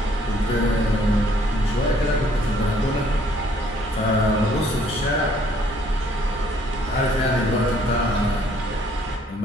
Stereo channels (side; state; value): both; normal; correlation 0.63